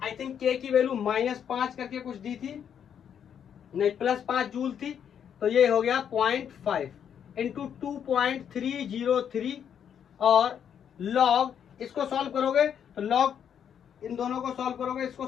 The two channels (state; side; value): quieter; right; 8.5 dB